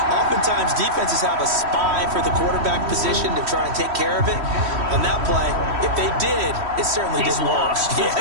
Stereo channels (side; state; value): left; late; 3.1 ms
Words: Oftentimes, defenses have a spy for the quarterback position to try and take care of it. On that play, if they did, it certainly didn't work. Lost. Yeah,